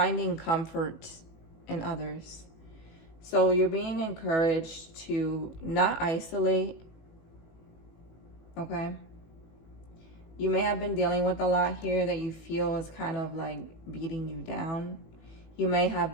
comfort in others. So you're being encouraged to not isolate, okay? You may have been dealing with a lot here that you feel is kind of like beating you down. You may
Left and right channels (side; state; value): right; late; 18 ms